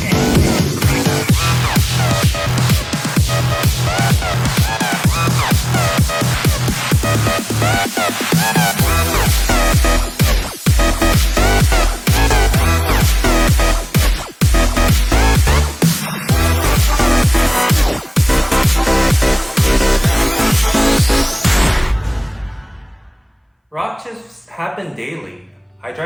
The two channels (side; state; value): both; identical; correlation 1.00